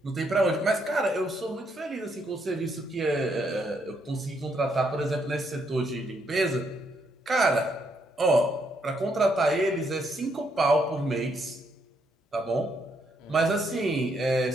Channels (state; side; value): normal; both; correlation 0.75